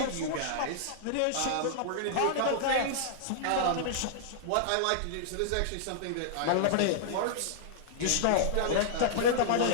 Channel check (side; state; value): both; different; correlation -0.01